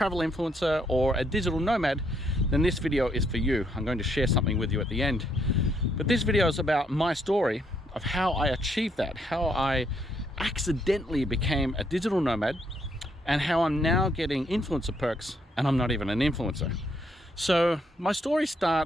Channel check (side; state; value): both; normal; correlation 0.73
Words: influencer or a digital nomad, then this video is for you. I'm going to share something with you at the end. But this video is about my story of how I achieved that, how I accidentally became a digital nomad, and how I'm now getting influencer perks and I'm not even an influencer. So my story